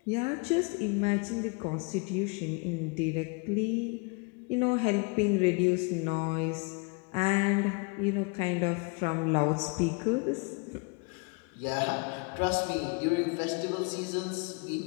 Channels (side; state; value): right; quieter; 31.5 dB